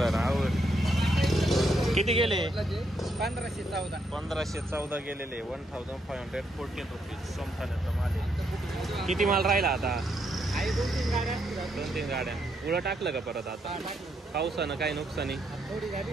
आवड. किती गेले? 1514 गेलेले. 1514 रुपीज सोमठाण्याचा माल आहे. किती माल राहिला आता? 2-3 गाड्या. उळं टाकलं का परत आता? पावसानं काही नुकसानी?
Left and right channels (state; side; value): normal; both; correlation 0.77